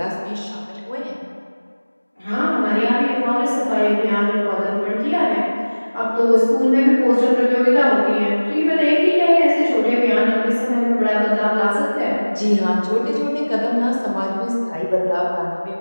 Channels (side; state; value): both; inverted; correlation -1.00